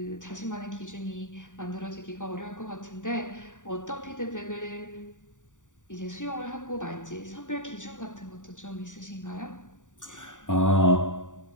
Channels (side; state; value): right; late; 0.86 ms